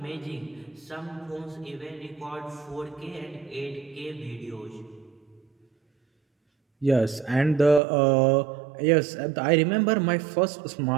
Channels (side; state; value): left; drops out; at 7.8 s